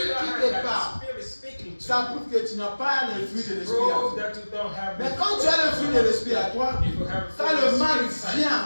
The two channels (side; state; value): both; inverted; correlation -1.00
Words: don't qui have te that parle, spirit speaking to ça you, prouve que tu n'as pas le fruit de l'esprit à prove toi. that you don't have Mais the quand fruit tu as le of fruit the de Holy l'esprit à Spirit. toi, If you have quand fruit le of the mal Spirit vient